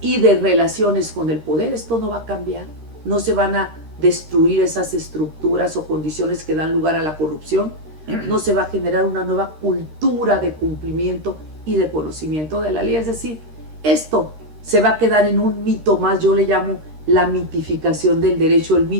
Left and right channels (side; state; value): left; late; 13 ms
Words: y de relaciones con el poder, esto no va a cambiar. No se van a destruir esas estructuras o condiciones que dan lugar a la corrupción. No se va a generar una nueva cultura de cumplimiento y de conocimiento de la ley. Es decir, esto se va a quedar en un mito más. Yo le llamo la mitificación del derecho, el